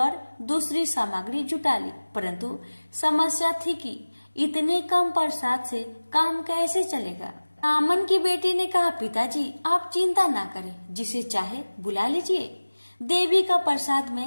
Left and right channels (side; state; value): both; inverted; correlation -1.00